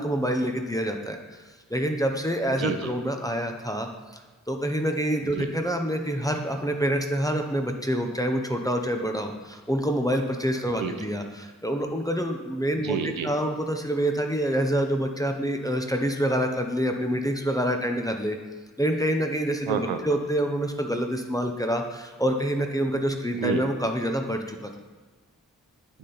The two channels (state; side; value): normal; both; correlation 0.66